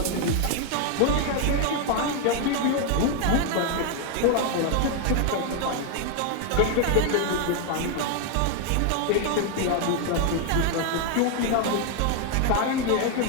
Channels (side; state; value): both; different; correlation 0.00